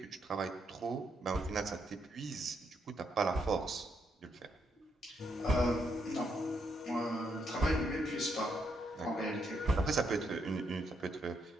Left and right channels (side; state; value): both; normal; correlation 0.77